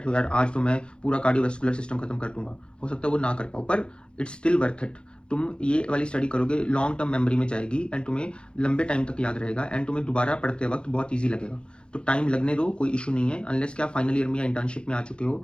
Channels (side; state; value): right; late; 0.055 ms